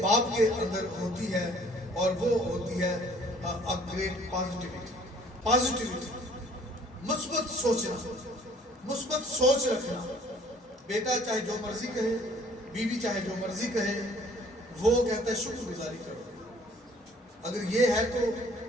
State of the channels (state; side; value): normal; both; correlation 0.56